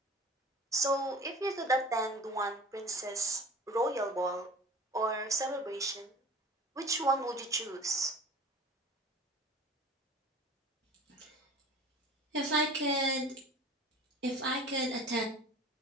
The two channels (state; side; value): normal; both; correlation 0.42